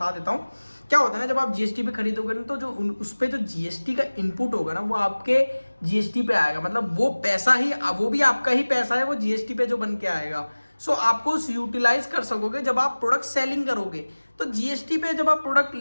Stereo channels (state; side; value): inverted; both; correlation -1.00